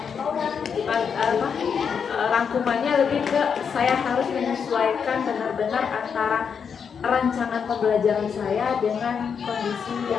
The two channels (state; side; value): quieter; right; 6.7 dB